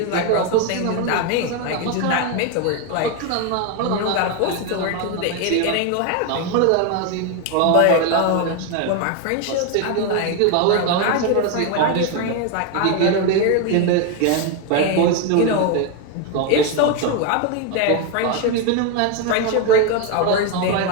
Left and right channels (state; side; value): different; both; correlation 0.01